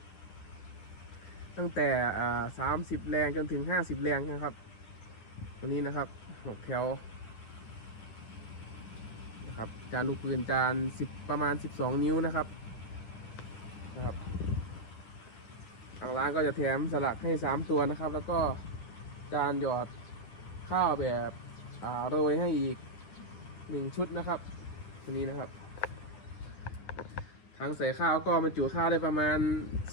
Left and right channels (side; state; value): right; late; 9.7 ms